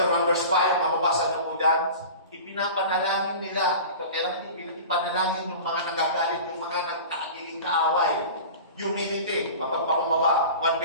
1 verse 5, mababasa niyo po dyan. Ipinapanalangin nila. Ito, kailangan ipanalangin yung mga nagagalit, yung mga nagkakagiging kaaway. Humility, mapagpakumbaba. 1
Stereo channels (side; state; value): both; inverted; correlation -0.36